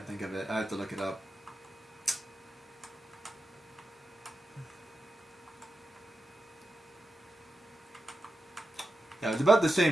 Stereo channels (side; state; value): both; normal; correlation 0.89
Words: think of it. I have to look it up. Yeah, I was about to say